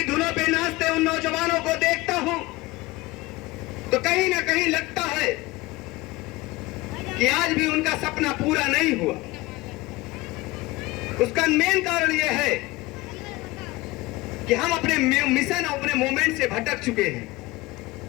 धुनों पे नाचते उन नौजवानों को देखता हूं तो कहीं ना कहीं लगता है कि आज भी उनका सपना पूरा नहीं हुआ। उसका मेन कारण यह है कि हम अपने मिशन और अपने मूवमेंट से भटक चुके हैं।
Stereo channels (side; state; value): right; quieter; 20.9 dB